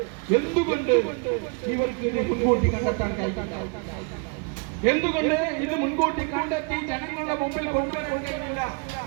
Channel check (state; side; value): quieter; left; 35.0 dB